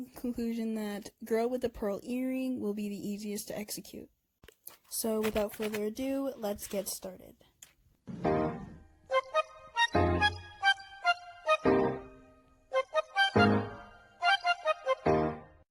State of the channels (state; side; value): identical; both; correlation 1.00